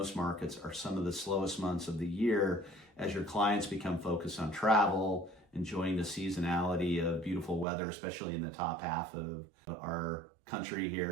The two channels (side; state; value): left; drops out; at 7.7 s